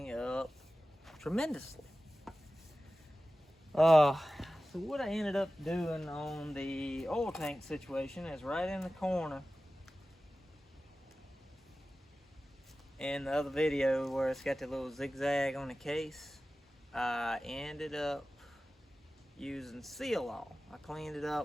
up tremendously. So what I ended up doing on the oil tank situation is right in the corner in the other video where it's got the little zigzag on the case. I ended up using Seal-All. I cleaned it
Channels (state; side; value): normal; both; correlation 0.96